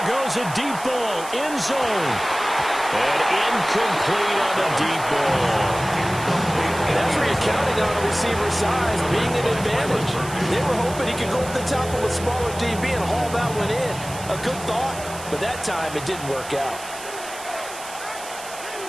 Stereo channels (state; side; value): noise; right; hiss, 13 dB below the sound